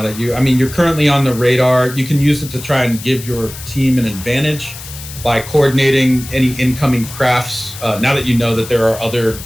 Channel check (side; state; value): left; noise; hiss, 13 dB below the sound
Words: that you're currently on the radar? You can use it to try and give your team an advantage by coordinating any incoming crafts, now that you know that there are other